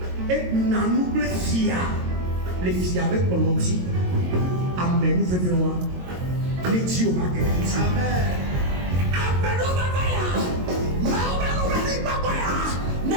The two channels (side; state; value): left; late; 22 ms